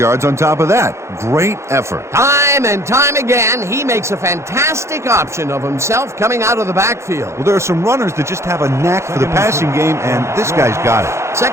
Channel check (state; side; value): late; left; 0.13 ms